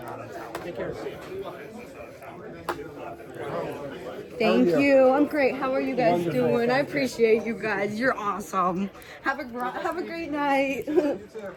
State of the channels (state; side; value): identical; both; correlation 1.00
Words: Thank How are you. I'm great. How are you guys Wonderful. doing? I appreciate you guys. You're awesome. Have a great night.